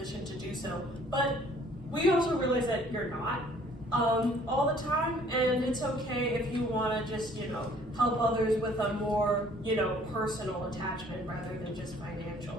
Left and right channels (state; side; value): normal; both; correlation 0.57